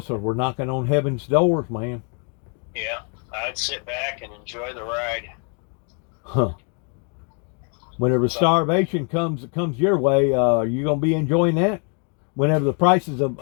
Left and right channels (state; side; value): quieter; right; 38.5 dB